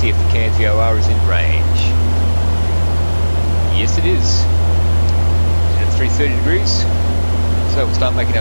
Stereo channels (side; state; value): both; inverted; correlation -1.00